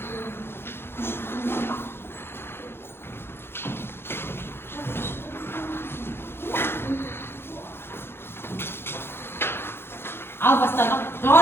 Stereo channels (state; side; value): late; right; 0.11 ms